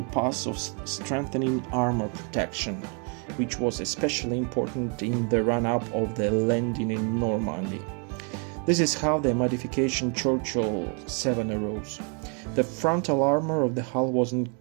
path of strengthening armor protection, which was especially important in the run-up of the landing in Normandy. This is how the modification Churchill 7 arose. The frontal armor of the hull was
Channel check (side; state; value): left; quieter; 38.1 dB